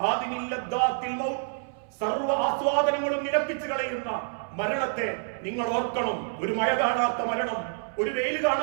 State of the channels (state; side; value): silent; left; 60 dB below the other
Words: ഹാദിമിൽ ലദ്ദാത്തിൽ മൗത്ത്, സർവ്വ ആസ്വാദനങ്ങളും നിലപ്പിച്ചു കളയുന്ന മരണത്തെ നിങ്ങൾ ഓർക്കണം. ഒരു മഴ കാണാത്ത മരണം, ഒരു വെയിൽ